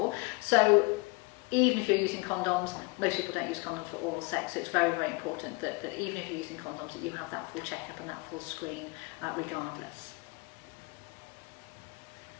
So even if you're using condoms, most people don't use condoms for oral sex, so it's very, very important that even if you're using condoms, that you have that full checkup and that full screen regardless.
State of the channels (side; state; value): right; quieter; 25.3 dB